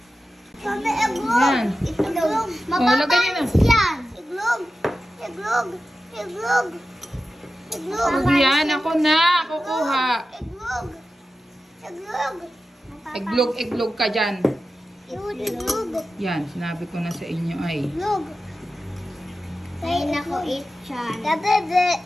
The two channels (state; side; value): normal; both; correlation 0.93